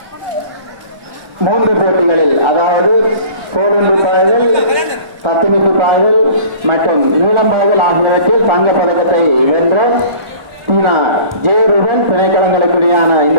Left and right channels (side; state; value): left; late; 1.4 ms